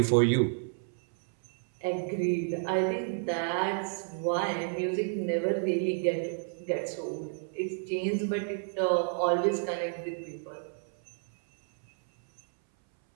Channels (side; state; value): left; silent; 57 dB below the other